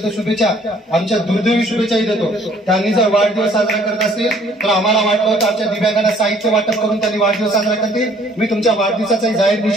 शुभेच्छा आमच्या दुर्दैवी शुभेच्छाही देतो। त्यांनी जर वाढदिवस साजरा करत असतील तर आम्हाला वाटलं होतं आमच्या दिव्यांगांना साहित्य वाटप करून त्यांनी वाढदिवस साजरा करतील। मी तुमच्या वाढदिवसाचाही जाहीर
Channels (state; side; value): normal; both; correlation 0.59